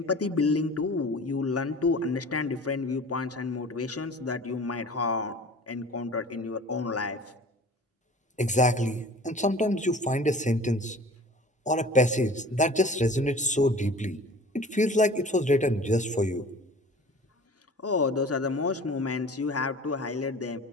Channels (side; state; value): both; normal; correlation 0.43